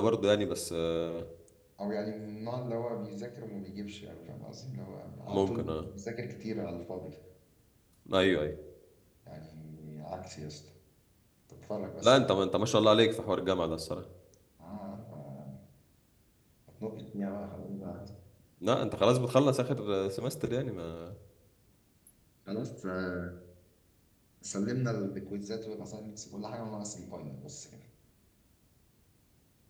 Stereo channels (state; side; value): identical; both; correlation 1.00